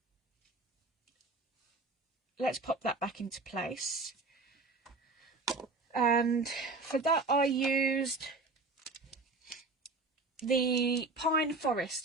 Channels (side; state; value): left; quieter; 3.5 dB